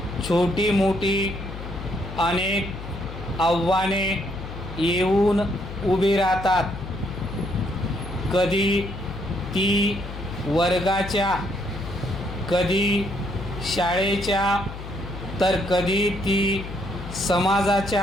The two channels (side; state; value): left; noise; hum, 10 dB below the sound